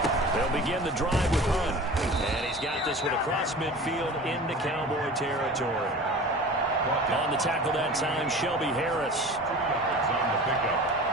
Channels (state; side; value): normal; both; correlation 0.38